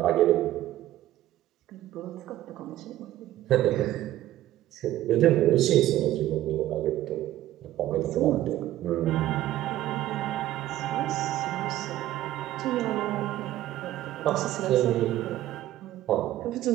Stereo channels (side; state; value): left; quieter; 14.2 dB